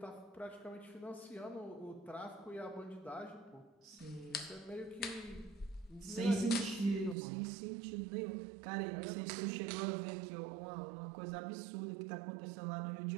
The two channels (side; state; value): left; drops out; at 7.2 s